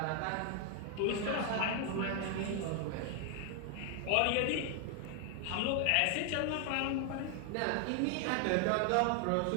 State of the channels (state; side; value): different; both; correlation 0.00